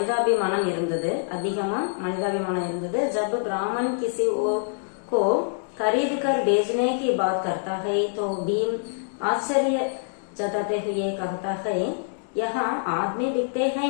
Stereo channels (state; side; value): silent; right; digital silence